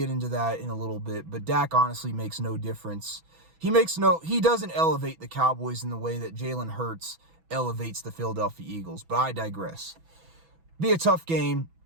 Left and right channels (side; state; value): left; late; 6.1 ms